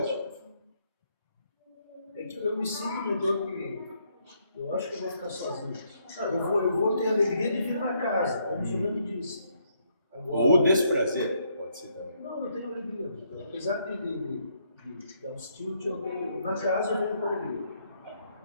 É que eu me sinto, doutor, que eu acho que eu vou ficar sozinho. Eu vou ter a alegria de vir na casa, como o senhor me disse. Agora, Ou desprazer, pode ser também. não, eu tenho alegria. Doutor. Apesar de dar uns tilt, eu tenho, na casa eu venho com alegria.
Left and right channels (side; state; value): both; inverted; correlation -0.73